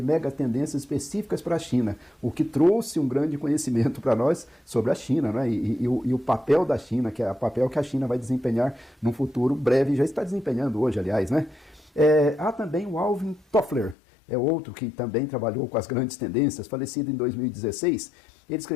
específicas para a China, o que trouxe um grande conhecimento para nós sobre a China, né? E o papel da China, que é o papel que a China vai desempenhar num futuro breve, já está desempenhando hoje, aliás, né? Há também o Alvin Toffler, é outro que também trabalhou com as grandes tendências, falecido em 2016. Ele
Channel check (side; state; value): right; drops out; at 14.0 s